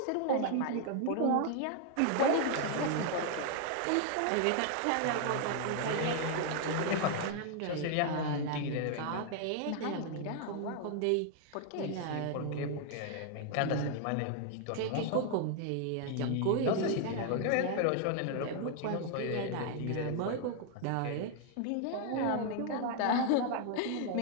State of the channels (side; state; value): both; different; correlation 0.00